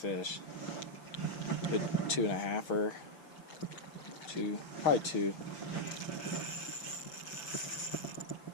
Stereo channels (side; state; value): right; late; 6.4 ms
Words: Good 2.5-er. Probably 2.